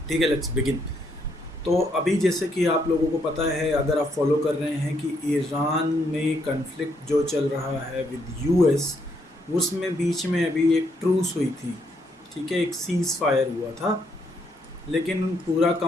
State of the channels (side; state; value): both; normal; correlation 0.74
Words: ठीक है, लेट्स बिगिन। तो अभी जैसे कि आप लोगों को पता है, अगर आप फॉलो कर रहे हैं, कि ईरान में कन्फ्लिक्ट जो चल रहा है विद यूएस, उसमें बीच में अभी एक ट्रूस हुई थी। ठीक है, एक सीज़ फायर हुआ था, लेकिन पूरा